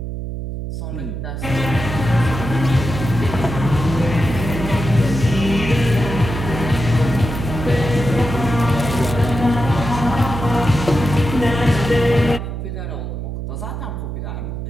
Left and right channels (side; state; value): right; noise; hum, 6 dB below the sound